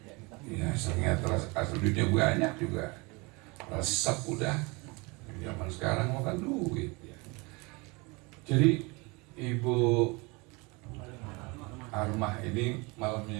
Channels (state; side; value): quieter; left; 27.0 dB